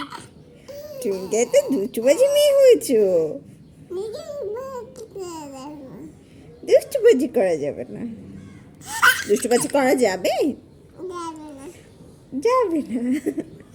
তুমি তো দুষ্টুবাজি মেয়ে হয়েছো। দুষ্টুবাজি করা যাবে না। দুষ্টুবাজি করা যাবে? যাবে না।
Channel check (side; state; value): both; identical; correlation 1.00